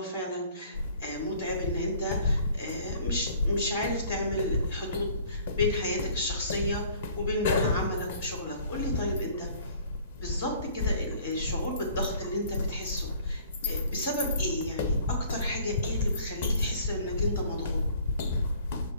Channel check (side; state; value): both; inverted; correlation -0.54